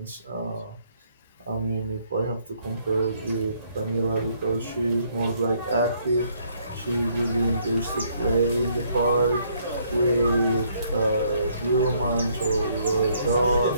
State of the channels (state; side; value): inverted; both; correlation -0.67